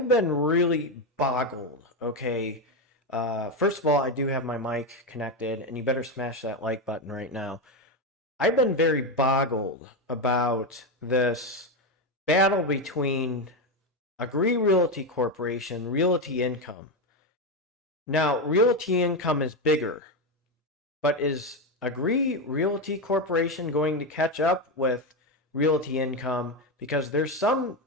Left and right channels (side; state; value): both; normal; correlation 0.11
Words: been really boggled, okay? First of all, I do have my mic connected, and you better smash that like button right now. I've been very boggled about this battle between Abbvie Realty Corporation, Realty Income. Now, Realty Income is bigger, but is Abbvie Realty Corporation going to catch up with Realty Income? Because there's some